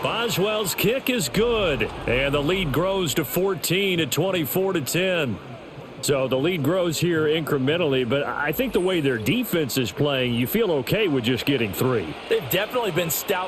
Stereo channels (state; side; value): identical; both; correlation 1.00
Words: Boswell's kick is good, and the lead grows to 14 at 24-10. So the lead grows here incrementally, but I think the way their defense is playing, you feel okay with just getting 3. They've definitely been